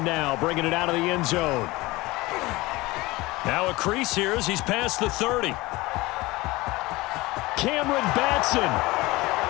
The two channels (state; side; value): quieter; right; 21.0 dB